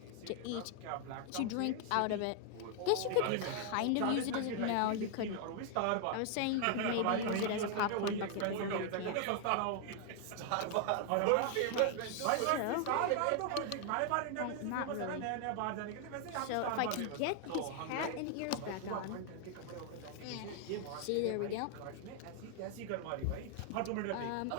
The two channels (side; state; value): both; different; correlation 0.00